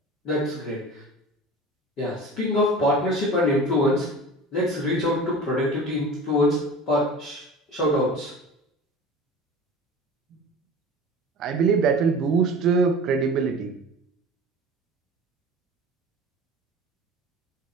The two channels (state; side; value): normal; both; correlation 0.37